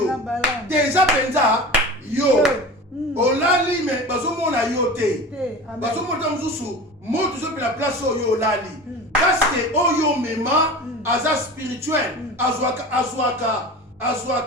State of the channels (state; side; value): normal; both; correlation 0.34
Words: Déjà penza yo. Olali mais bazomona yo te. Bazomona mususu. Mo toujours la place yo lali. Parce que oyo mema aza spirituel azwaka